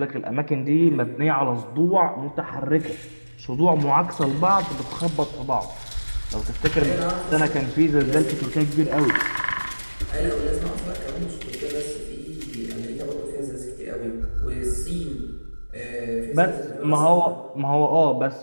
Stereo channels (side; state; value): both; inverted; correlation -1.00